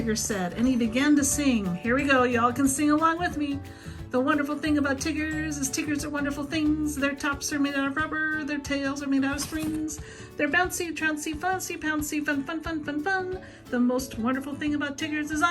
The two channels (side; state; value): both; identical; correlation 1.00